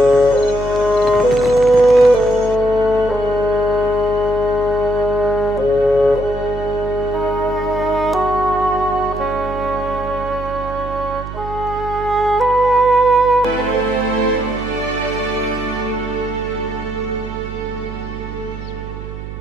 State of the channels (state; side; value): noise; right; hum, 10 dB below the sound